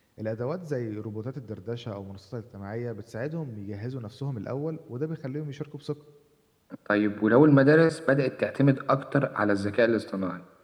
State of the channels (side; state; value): both; identical; correlation 1.00